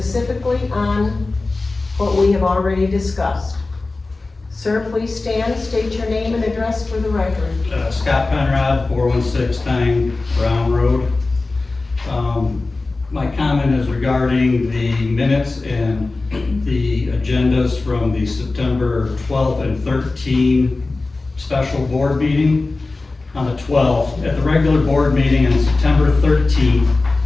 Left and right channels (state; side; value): quieter; right; 3.4 dB